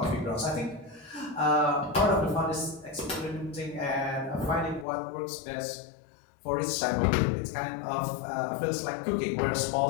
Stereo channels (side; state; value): right; drops out; at 4.9 s